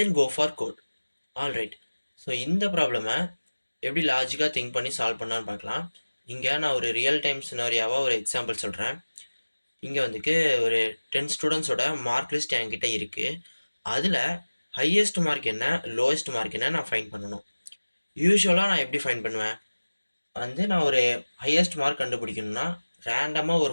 go for code. Alright, so இந்த ப்ராப்ளமை எப்படி லாஜிக்காக திங்க் பண்ணி சால்வ் பண்ணான்னு பார்க்கலாம். இங்கே நான் ஒரு ரியல் டைம் சினாரியாவாக ஒரு எக்ஸாம்பிள் சொல்கிறேன். இங்கே வந்துட்டு ஒரு 10 ஸ்டூடெண்ட்ஸோட மார்க் லிஸ்ட் என்கிட்ட இருக்குது. அதில் ஹையஸ்ட் மார்க் என்ன, லோவஸ்ட் மார்க் என்ன நான் ஃபைண்ட் பண்ணணும். யூஸ்வலாக நான் எப்படி ஃபைண்ட் பண்ணுவேன் நான் ஒரு ஹையஸ்ட் மார்க் கண்டுபிடிக்கணும்னா ரேண்டமாக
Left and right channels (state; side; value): inverted; both; correlation -1.00